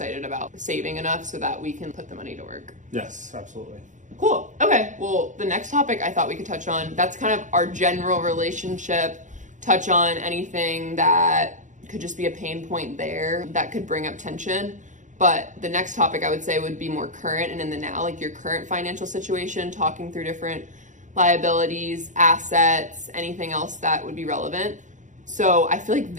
about saving enough so that we can put the money to work. Yes, absolutely. Cool. Okay. Well, the next topic I thought we could touch on, that's kind of our general relationship, touch on anything that could just be a pain point there that could bring up tension. But the next topic I would say would be more current and in the now, like your current financial situation, talking through different liabilities, assets, anything else that would be relevant. So I feel like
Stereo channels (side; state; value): left; late; 0.36 ms